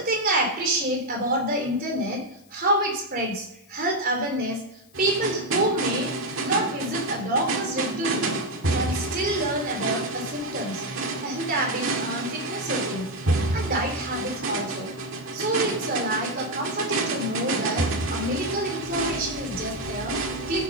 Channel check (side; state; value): left; noise; hiss, 29 dB below the sound